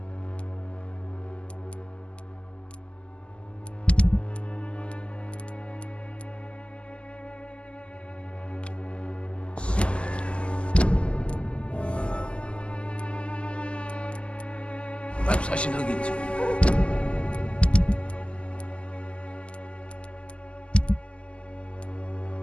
Perhaps I should look into it.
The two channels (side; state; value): right; late; 0.054 ms